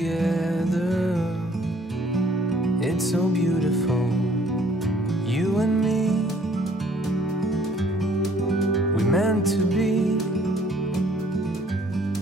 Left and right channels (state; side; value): normal; both; correlation 0.60